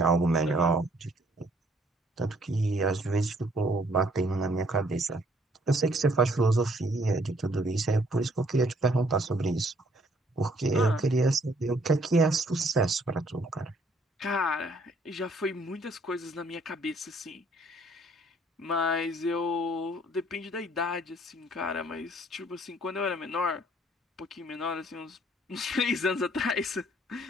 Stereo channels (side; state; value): both; normal; correlation 0.63